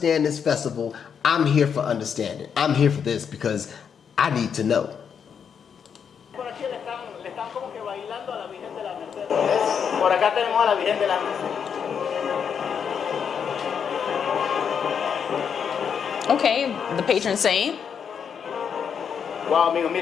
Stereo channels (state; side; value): quieter; right; 7.2 dB